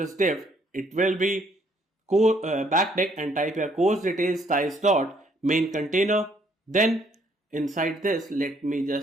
div. It will be backtick, and type here course details styles dot main container. Then inside this let me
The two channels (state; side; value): normal; both; correlation 0.66